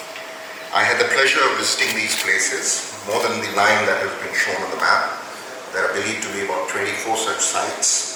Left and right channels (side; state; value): both; identical; correlation 1.00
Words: I had the pleasure of visiting these places, more than the 9 that have been shown on the map. There are believed to be about 24 such